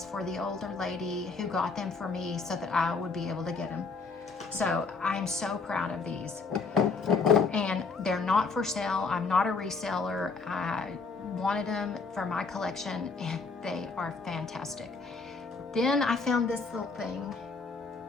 for the older lady who got them for me so that I would be able to get them. So I'm so proud of these. And they're not for sale. I'm not a reseller. I wanted them for my collection, and they are fantastic. Then I found this little thing.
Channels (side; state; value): right; quieter; 4.4 dB